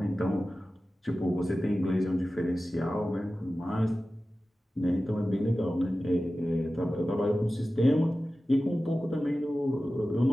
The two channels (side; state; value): both; normal; correlation 0.95